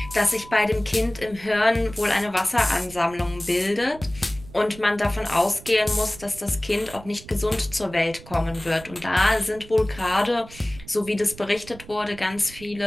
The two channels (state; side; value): noise; right; rumble, 18 dB below the sound